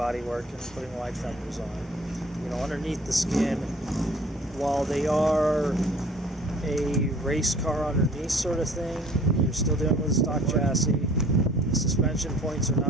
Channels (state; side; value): normal; both; correlation 0.52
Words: and putting wide fenders on. You know, underneath the skin, while they are a race car underneath sort of thing, you're still dealing with a stock chassis. The suspension points are